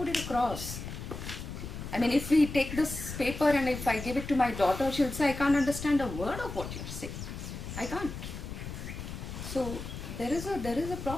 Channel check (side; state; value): left; noise; rumble, 8 dB below the sound